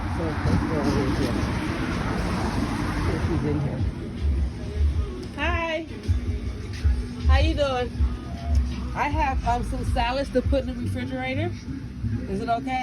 So let's go over here. She's in here. Hi. How you doing? I have some salads to put in the refrigerator. Is it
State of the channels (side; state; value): both; identical; correlation 1.00